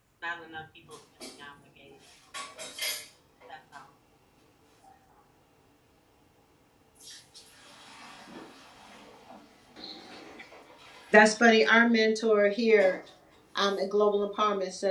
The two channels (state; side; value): identical; both; correlation 1.00